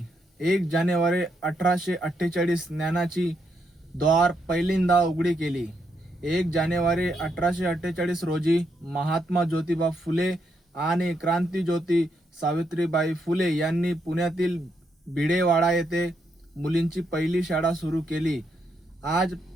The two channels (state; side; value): normal; both; correlation 0.79